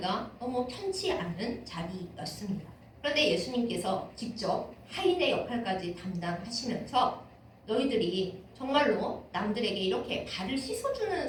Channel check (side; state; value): both; identical; correlation 1.00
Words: 너무 편치 않은 자리였습니다. 그런데 예수님께서 직접 하인의 역할까지 담당하시면서 너희들이 정말로 남들에게 이렇게 발을 씻어주는